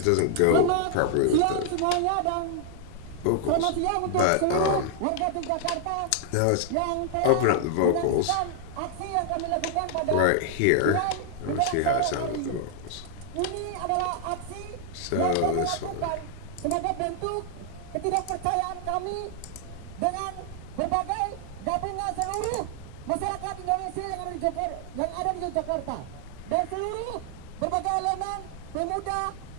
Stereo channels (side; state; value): both; different; correlation 0.00